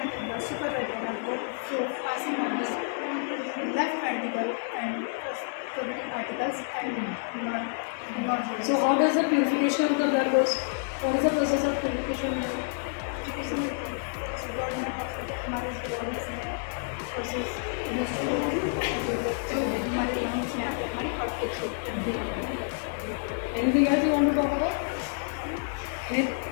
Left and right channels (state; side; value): silent; right; digital silence